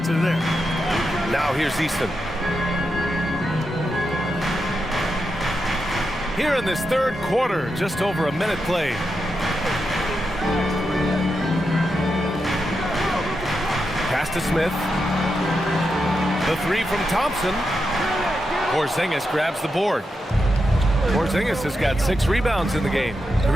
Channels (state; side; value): normal; both; correlation 0.86